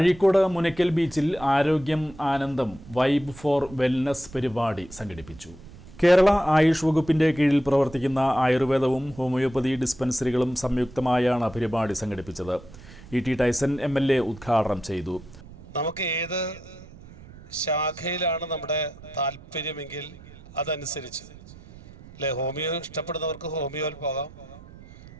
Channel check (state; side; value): noise; right; rumble, 19 dB below the sound